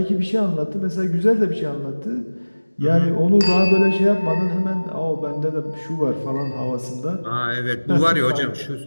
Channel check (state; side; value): inverted; both; correlation -1.00